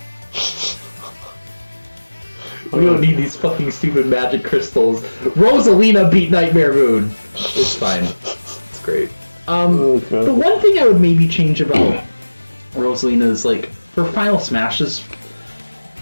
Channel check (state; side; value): inverted; both; correlation -1.00